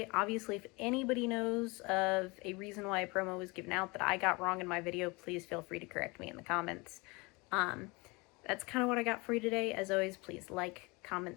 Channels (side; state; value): right; quieter; 26.2 dB